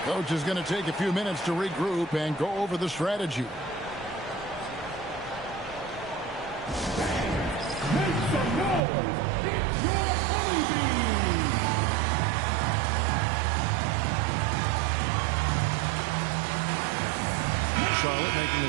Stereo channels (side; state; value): left; drops out; at 8.8 s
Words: Coach is going to take a few minutes to regroup and go over the strategy. Charlotte making